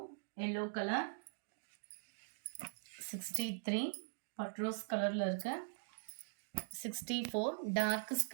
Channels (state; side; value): silent; left; digital silence